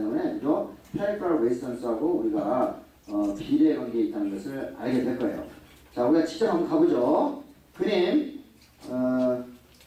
그죠? 페리퍼럴 레지스턴스하고 우리가 비례 관계에 있다는 것을 알게 될 거예요. 자, 우리가 직접 한번 가보죠. 그림,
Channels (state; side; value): identical; both; correlation 1.00